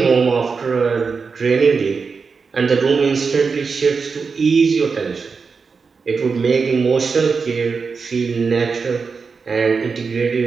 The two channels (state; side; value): quieter; left; 5.1 dB